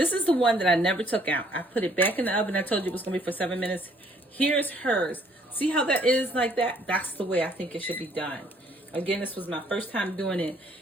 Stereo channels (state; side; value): normal; both; correlation 0.63